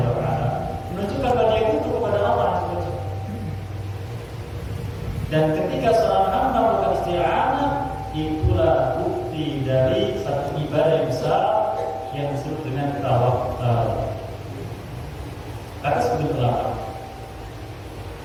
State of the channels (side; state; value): both; identical; correlation 1.00